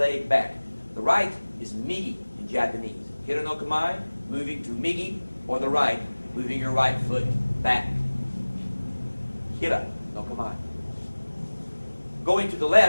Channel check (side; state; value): both; inverted; correlation -1.00